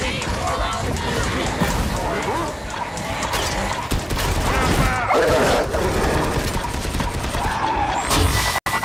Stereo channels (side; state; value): both; identical; correlation 1.00